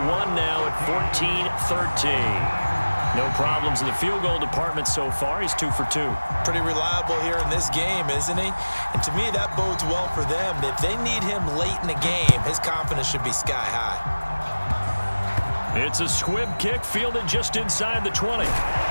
1 now at 14-13. No problems in the field goal department so far. He's 2 for 2. Pretty reliable here in this game, isn't he? And to me, that bodes well for them. If they need him late in the game, his confidence should be sky high. It's a squib kick fielded just inside the 20.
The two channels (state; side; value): inverted; both; correlation -1.00